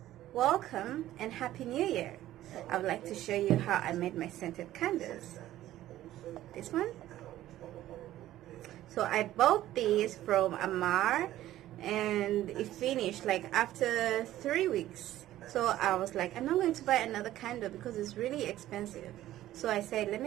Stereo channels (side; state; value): left; quieter; 14.1 dB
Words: welcome and Happy New Year. I would like to show you how I made my scented candles. This one. So I bought these from Amar and it finished like after 3 weeks. So I was like, I'm not going to buy another candle because it's really expensive. So I said, let